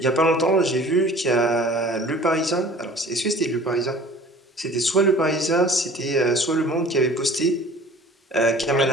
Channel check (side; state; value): both; normal; correlation 0.46